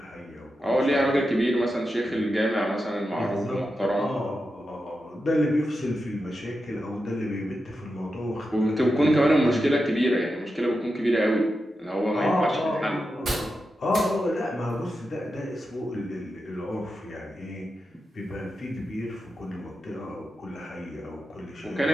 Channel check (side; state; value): both; normal; correlation 0.89